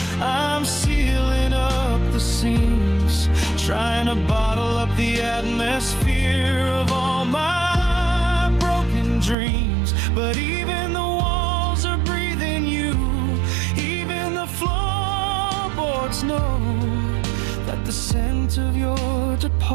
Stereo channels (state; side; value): drops out; left; at 9.3 s